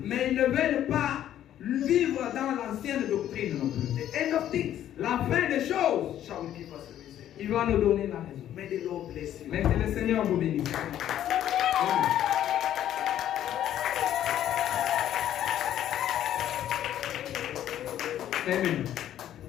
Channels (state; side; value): quieter; right; 11.4 dB